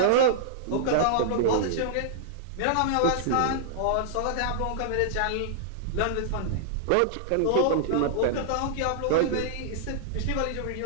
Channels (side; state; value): both; different; correlation -0.01